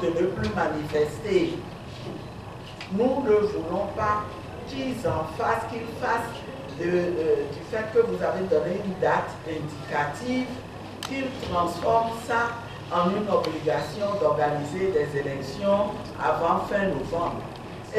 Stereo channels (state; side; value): identical; both; correlation 1.00